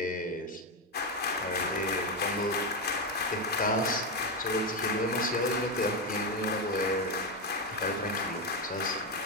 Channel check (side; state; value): both; normal; correlation 0.09